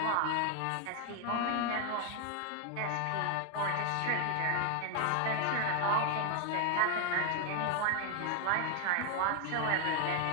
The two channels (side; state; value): both; different; correlation 0.00